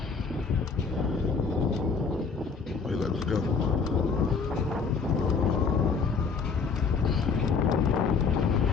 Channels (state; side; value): quieter; right; 5.2 dB